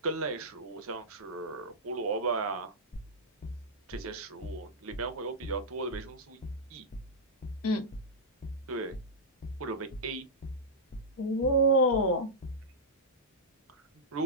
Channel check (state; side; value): normal; both; correlation -0.10